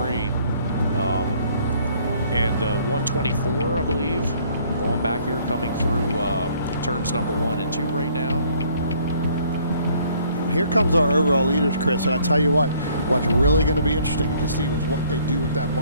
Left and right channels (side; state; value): both; inverted; correlation -0.61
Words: And the 124, I believe, going back here, coming through turns number 1 and 2 right now. Here comes our overall leaders, Chris, and I tell you what's really going to be interesting to see is what they do with that